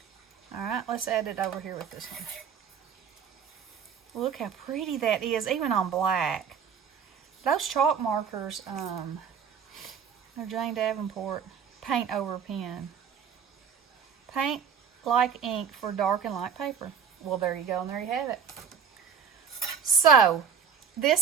Alright, let's add it over here with this one. Look how pretty that is, even on black. those chalk markers, they're Jane Davenport paint over pen. Paint like ink for dark and light paper. Well, there you go, and there you have it. So,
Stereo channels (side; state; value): left; quieter; 7.1 dB